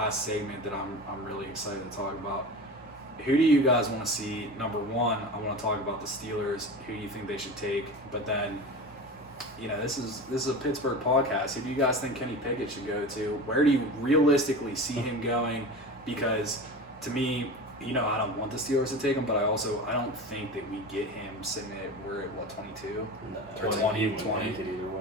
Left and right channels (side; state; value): both; normal; correlation 0.31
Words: segment that I'm really excited to talk about. Who do you guys want to see? Number one, I want to talk about the Steelers. Who do you think they should take? But then, you know, this is a Pittsburgh podcast. Who do you guys think Kenny Pickett should go to? Where do you realistically see him going? Because to me, you know, I don't want the Steelers to take him, but I don't think that we get him sitting at we're at what 22. No, Or 20, 20. he wouldn't make it either